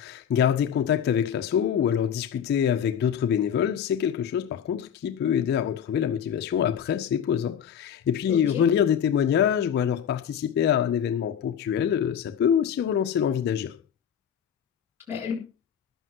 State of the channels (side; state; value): right; quieter; 8.6 dB